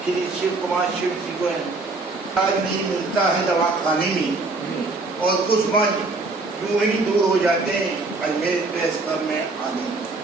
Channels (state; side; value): quieter; left; 3.5 dB